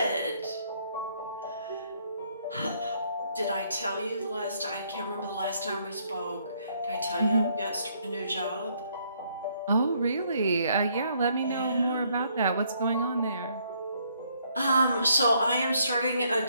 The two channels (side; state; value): both; inverted; correlation -0.69